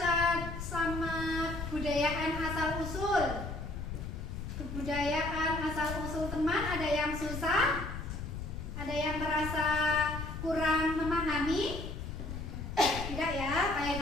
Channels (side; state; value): left; noise; rumble, 7 dB below the sound